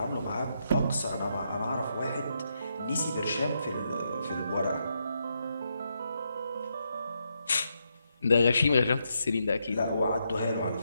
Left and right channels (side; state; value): both; inverted; correlation -0.81